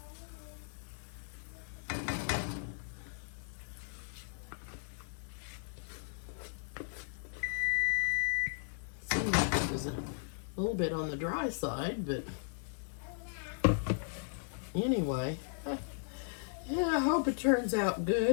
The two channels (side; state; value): right; silent; digital silence